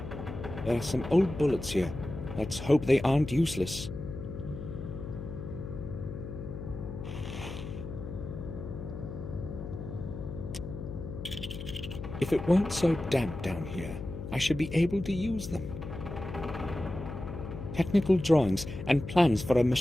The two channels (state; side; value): noise; left; hum, 8 dB below the sound